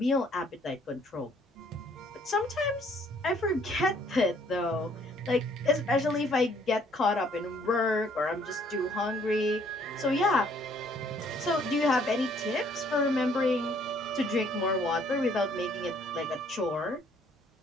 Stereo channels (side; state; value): both; normal; correlation 0.63